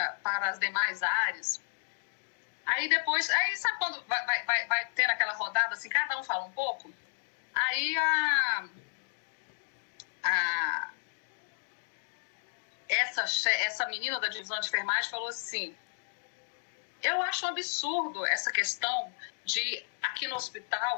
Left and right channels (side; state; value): right; silent; 56 dB below the other